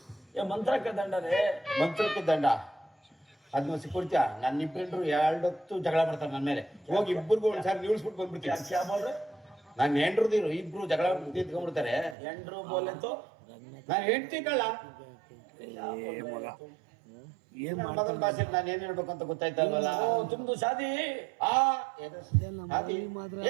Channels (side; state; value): left; drops out; at 12.2 s